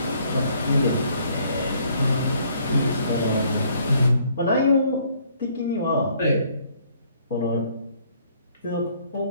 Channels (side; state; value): both; inverted; correlation -0.64